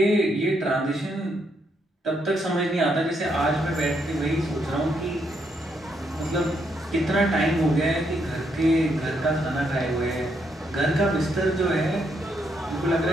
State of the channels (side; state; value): both; normal; correlation 0.76